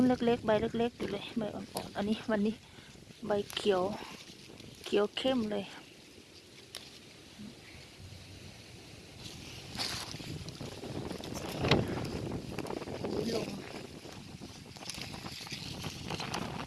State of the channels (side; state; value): both; identical; correlation 1.00